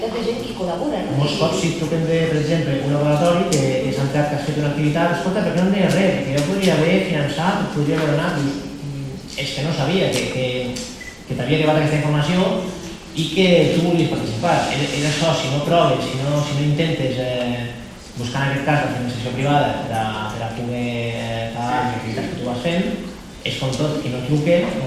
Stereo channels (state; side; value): identical; both; correlation 1.00